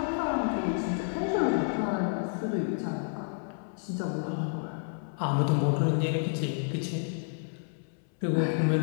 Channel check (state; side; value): silent; right; 58 dB below the other